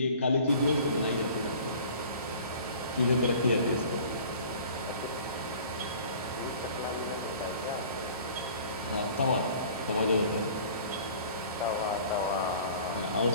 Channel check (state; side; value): inverted; both; correlation -0.47